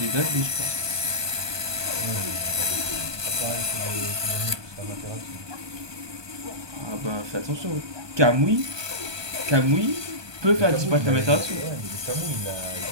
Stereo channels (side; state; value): left; late; 1.2 ms